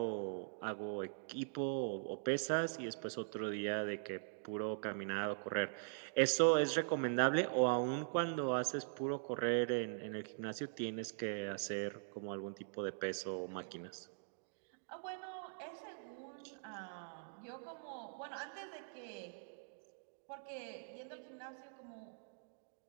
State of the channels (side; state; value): left; silent; digital silence